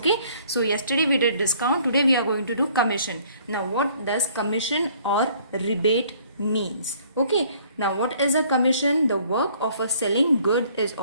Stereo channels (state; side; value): inverted; both; correlation -0.59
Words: so yesterday we did discount, today we are going to do commission. Now what does commission or rebate means? Okay, now what is a commission? The work of a selling good is